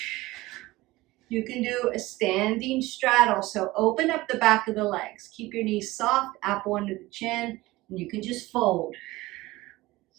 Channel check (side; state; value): left; quieter; 19.3 dB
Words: You can do a standing straddle, so open up the back of the legs. Keep your knees soft, apple under the chin, and you can just fold.